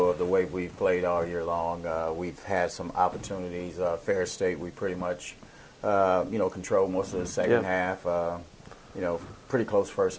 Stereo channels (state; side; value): identical; both; correlation 1.00